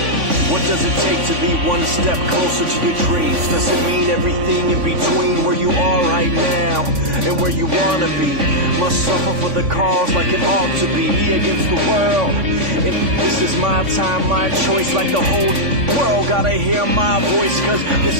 What does it take to be one step closer to your dreams? Does it mean everything in between where you are right now and where you wanna be? Must suffer for the cause like it ought to be, me against the world. If this is my time, my choice, like the whole world gotta hear my voice, cause this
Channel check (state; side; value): late; left; 3.5 ms